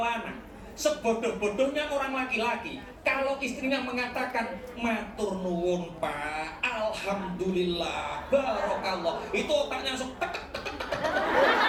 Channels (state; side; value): identical; both; correlation 1.00